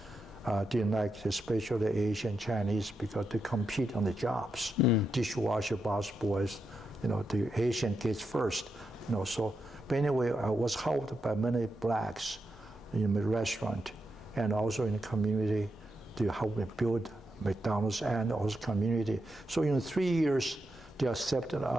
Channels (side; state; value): both; normal; correlation 0.85